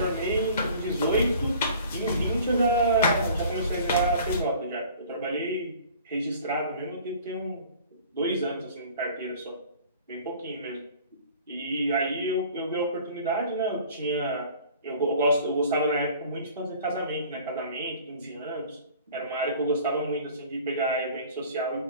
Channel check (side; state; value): both; inverted; correlation -0.47